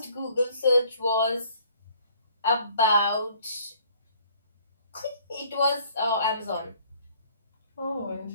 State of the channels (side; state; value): both; inverted; correlation -0.58